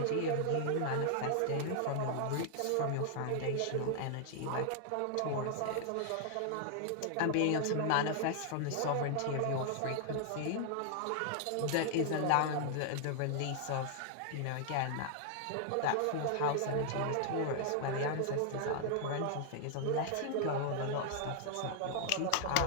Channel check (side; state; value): both; different; correlation 0.00